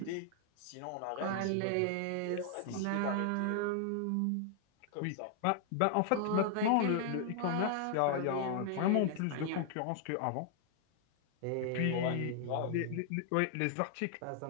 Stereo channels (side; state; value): both; different; correlation 0.00